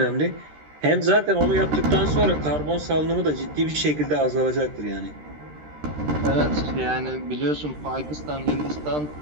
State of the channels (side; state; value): left; late; 13 ms